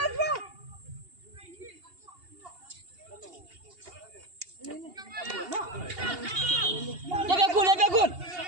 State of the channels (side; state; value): left; late; 2.8 ms